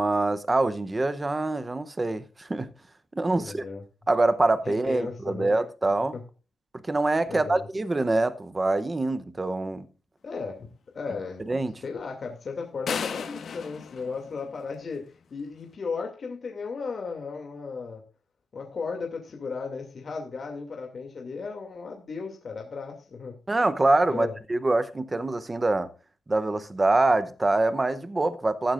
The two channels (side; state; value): both; normal; correlation 0.95